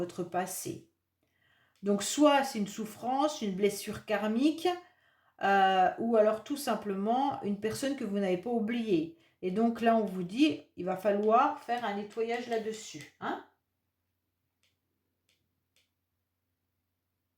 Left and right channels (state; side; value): identical; both; correlation 1.00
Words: passé. Donc soit c'est une souffrance, une blessure karmique, ou alors tout simplement une personne que vous n'avez pas oubliée. Et donc là on vous dit, il va falloir faire un nettoyage là-dessus. Hein?